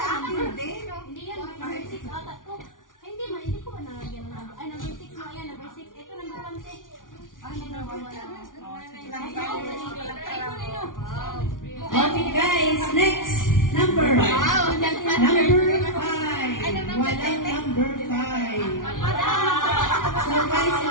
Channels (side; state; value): right; late; 0.88 ms